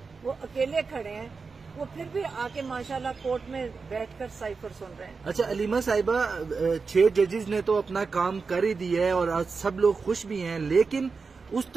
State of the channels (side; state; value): left; quieter; 4.7 dB